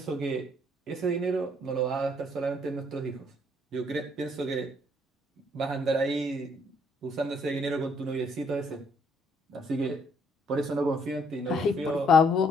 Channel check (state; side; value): normal; both; correlation 0.67